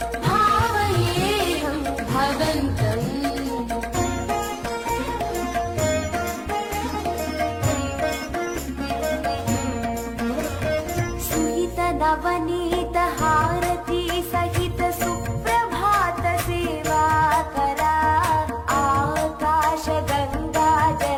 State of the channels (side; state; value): both; identical; correlation 1.00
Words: भावयेऽहं भवन्तम् सुहित नवनीत हारती सहित सुप्रभात सेवा करा आकाश गंगा